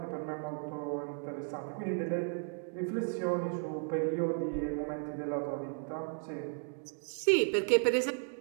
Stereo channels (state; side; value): silent; left; 55 dB below the other